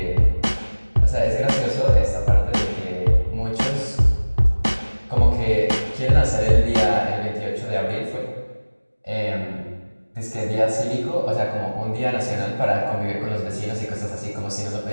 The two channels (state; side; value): inverted; both; correlation -1.00